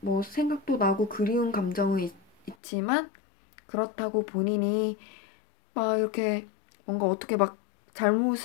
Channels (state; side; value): drops out; right; at 2.6 s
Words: 뭐 생각도 나고 그리운 감정은 있지만 그렇다고 본인이 막 이렇게 뭔가 어떻게 막